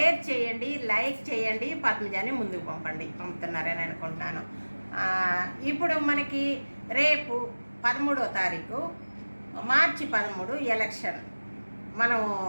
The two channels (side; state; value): both; inverted; correlation -1.00